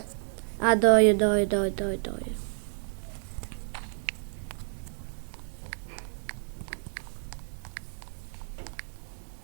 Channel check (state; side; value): silent; left; digital silence